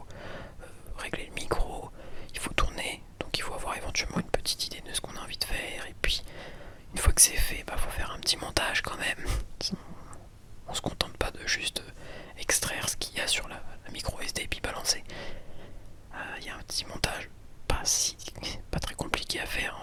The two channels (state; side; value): identical; both; correlation 1.00